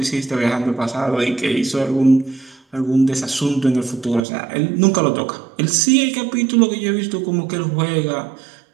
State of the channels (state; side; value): drops out; left; at 4.2 s